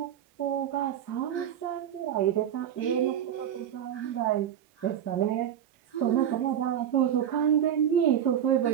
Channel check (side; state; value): left; quieter; 9.8 dB